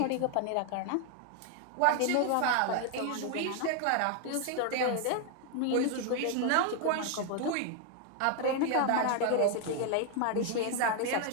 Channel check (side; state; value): both; different; correlation 0.01